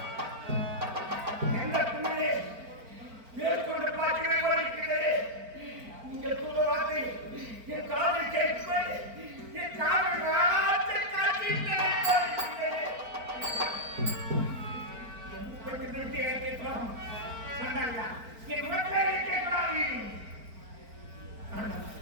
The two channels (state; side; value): late; left; 4.4 ms